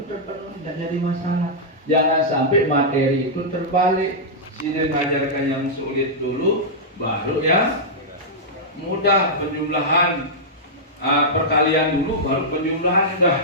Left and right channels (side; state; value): both; normal; correlation -0.09